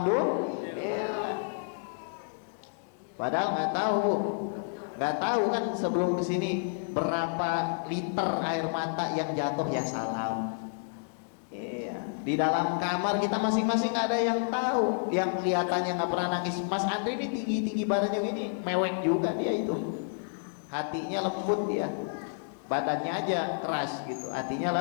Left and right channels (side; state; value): right; silent; digital silence